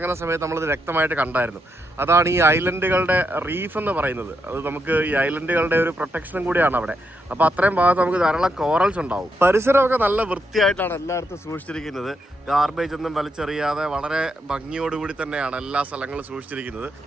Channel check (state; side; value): normal; both; correlation 0.81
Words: സമയത്ത് നമ്മളത് വ്യക്തമായിട്ട് കണ്ടായിരുന്നു. അതാണ് ഈ ഐലൻഡുകളുടെ റീഫ് എന്ന് പറയുന്നത്. അത് നമുക്ക് ഈ ഐലൻഡുകളുടെ ഒരു പ്രൊട്ടക്ഷനും കൂടിയാണ് അവിടെ. അപ്പോൾ അത്രയും ഭാഗത്ത് നമുക്ക് ധാരാളം കോറൽസ് ഉണ്ടാവും. പരിസരമൊക്കെ നല്ല വൃത്തിയായിട്ടാണ് എല്ലായിടത്തും സൂക്ഷിച്ചിരിക്കുന്നത്. ഗാർബേജ് ഒന്നും വലിച്ചെറിയാതെ വളരെ ഭംഗിയോടുകൂടി തന്നെയാണ് എല്ലാ സ്ഥലങ്ങളും സൂക്ഷിച്ചിരിക്കുന്നത്.